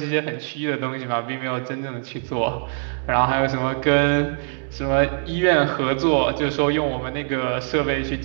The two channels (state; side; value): silent; left; digital silence